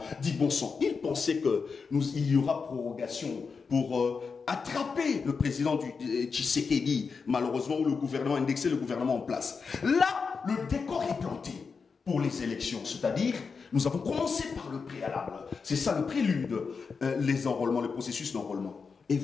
Dis bon sang, ils pensaient qu'il y aura prorogation pour attraper le président du Tshisekedi, malheureusement, ou le gouvernement, indexer le gouvernement en place. Là, le décor est planté pour les élections, c'est-à-dire, nous avons commencé par le préalable. C'est ça le prélude, les enrôlements, le processus d'enrôlement. Et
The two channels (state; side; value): quieter; right; 5.2 dB